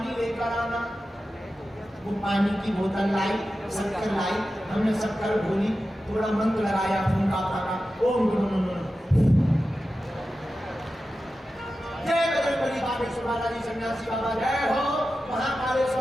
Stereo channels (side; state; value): both; normal; correlation 0.93